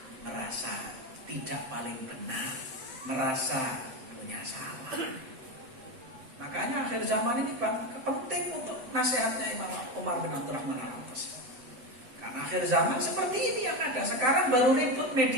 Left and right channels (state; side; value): late; left; 7.7 ms